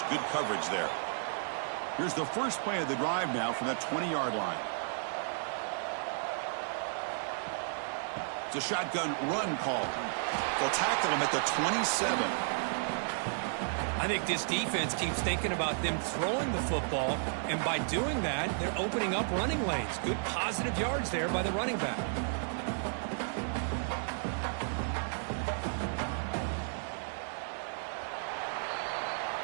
good coverage there. Here's the first play of the drive now from that 20-yard line. It's a shotgun run call. They'll tackle him at the 27. I think this defense keeps thinking about them throwing the football, and by doing that, they're opening up running lanes. Good positive yards there by the running back.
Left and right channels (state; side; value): silent; left; digital silence